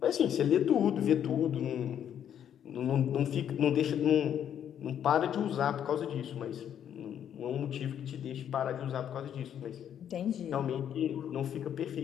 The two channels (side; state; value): right; quieter; 9.5 dB